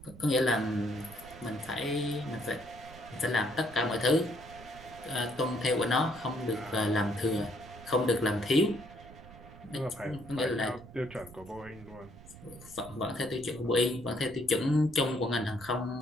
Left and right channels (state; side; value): noise; right; rumble, 18 dB below the sound